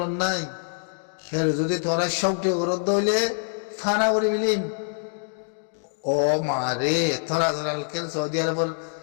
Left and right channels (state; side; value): silent; right; digital silence